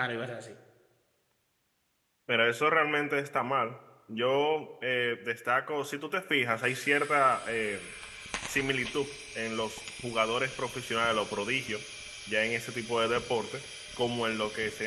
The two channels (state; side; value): identical; both; correlation 1.00